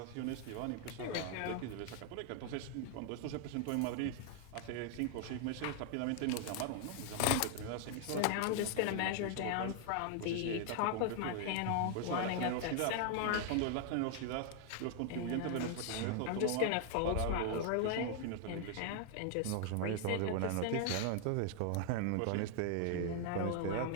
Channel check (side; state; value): both; different; correlation 0.00